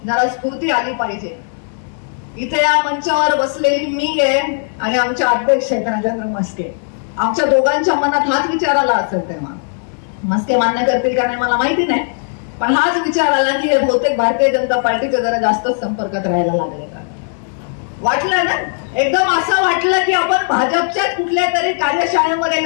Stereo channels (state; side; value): silent; right; digital silence